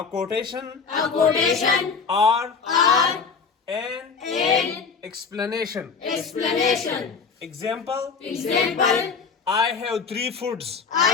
quotation or an explanation. Example. I have three foods.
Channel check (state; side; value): quieter; right; 5.4 dB